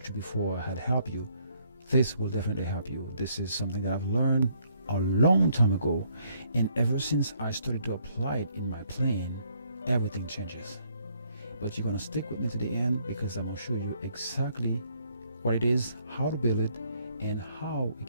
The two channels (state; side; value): inverted; both; correlation -0.68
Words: you before had helped you, this will definitely help you. This is something that I've learned a long time ago, and ever since I started to apply it in my playing, everything changes. But you're going to stick with me to the end, because I'm going to show you exactly what it is, how to build it, and how it